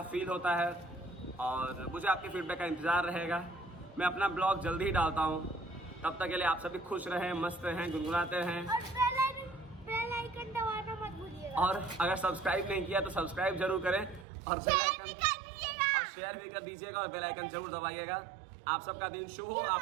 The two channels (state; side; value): drops out; left; at 14.2 s